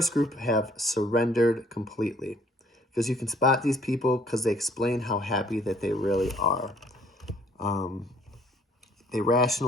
group have surrendered completely. Because you can spot these people because they explain how happy that they really are. They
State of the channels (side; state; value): both; normal; correlation 0.60